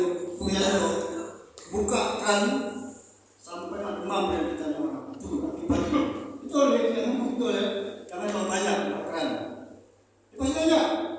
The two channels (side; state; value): both; identical; correlation 1.00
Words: punya itu buka kan sampai demam dan ditanya orang itu akibatnya. Itu oleh yang ngomong itu oleh karena kalau banyak keren. Pasti aja